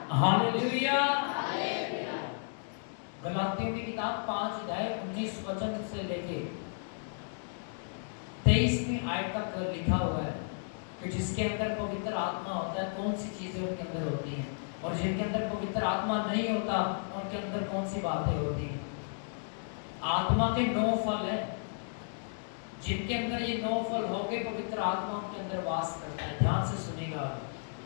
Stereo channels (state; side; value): silent; right; digital silence